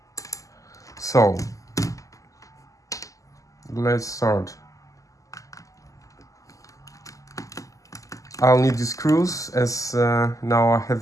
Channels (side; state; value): right; late; 0.16 ms